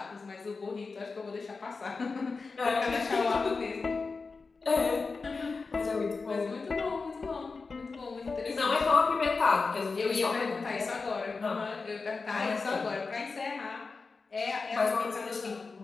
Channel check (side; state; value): right; quieter; 4.3 dB